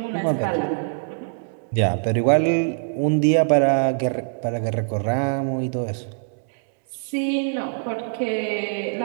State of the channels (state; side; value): silent; left; 63 dB below the other